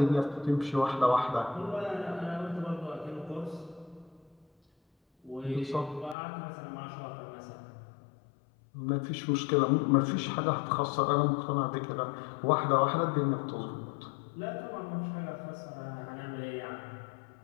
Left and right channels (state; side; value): drops out; right; at 6.2 s